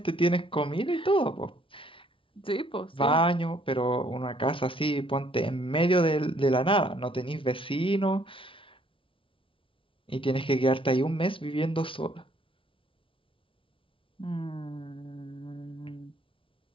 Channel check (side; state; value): right; late; 0.25 ms